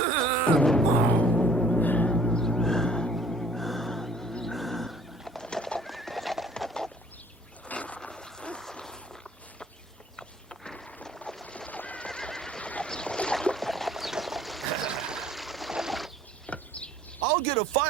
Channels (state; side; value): normal; both; correlation 0.54